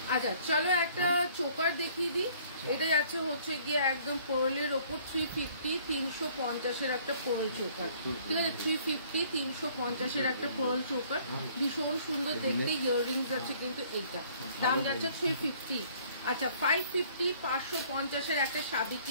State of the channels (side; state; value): both; inverted; correlation -0.58